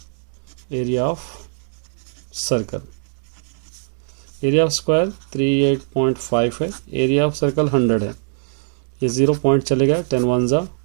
area of circle. Area of square 38.5 है, एरिया ऑफ सर्कल 100 है, ये 0 पॉइंट चलेगा, 10 1 ज़ा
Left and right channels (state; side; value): silent; left; digital silence